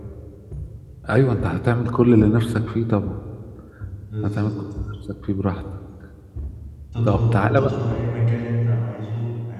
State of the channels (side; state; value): both; identical; correlation 1.00